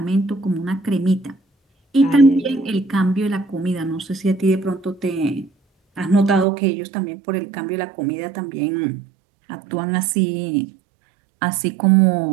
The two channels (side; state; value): left; drops out; at 6.5 s